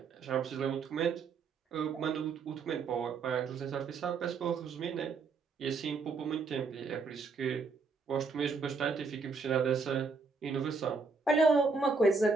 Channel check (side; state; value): left; quieter; 4.5 dB